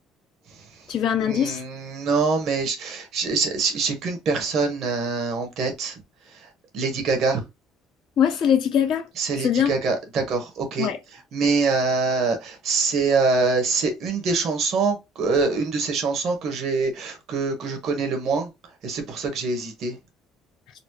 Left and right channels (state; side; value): normal; both; correlation 0.53